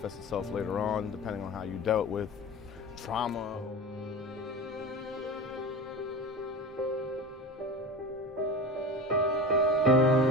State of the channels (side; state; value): both; normal; correlation 0.31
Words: itself later on, depending on how you dealt with trauma.